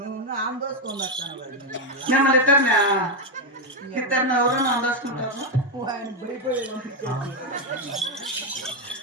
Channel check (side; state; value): both; normal; correlation 0.05